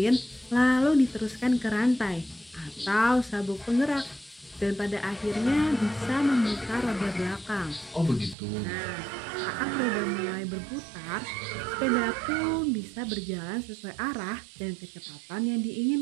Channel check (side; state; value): left; drops out; at 8.3 s